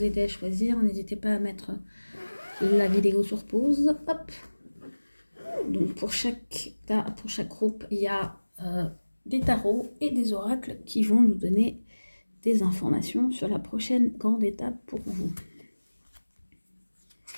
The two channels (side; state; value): both; inverted; correlation -1.00